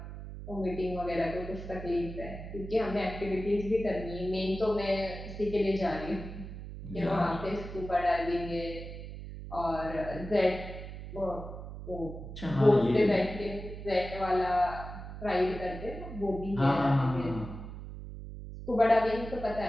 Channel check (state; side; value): noise; right; hum, 10 dB below the sound